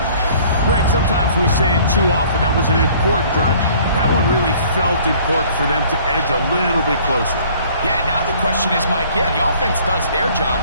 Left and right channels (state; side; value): inverted; both; correlation -0.54